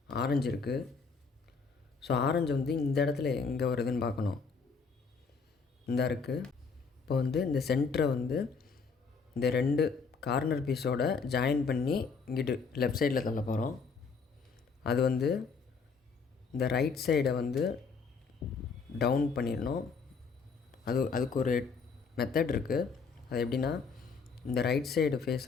ஆரஞ்சு இருக்குது. ஸோ ஆரஞ்சு வந்து இந்த இடத்துல எங்கே வருதுன்னு பார்க்கணும். இந்த இருக்குது. இப்போ வந்து இந்த சென்டரை வந்து இந்த 2 கார்னர் பீஸோட ஜாயின் பண்ணி இங்கிட்டு லெஃப்ட் சைடில் தள்ள போகிறோம். அது வந்து இந்த ரைட் சைடை வந்து டவுன் பண்ணிடணும். அதுக்கு ஒரு மெத்தட் இருக்குது. அது எப்படின்னா, இந்த ரைட் சைடு ஃபேஸை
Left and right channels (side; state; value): right; quieter; 5.2 dB